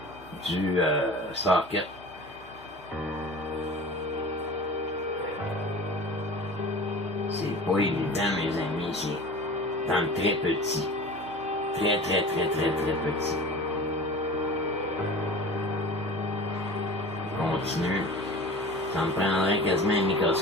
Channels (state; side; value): normal; both; correlation 0.38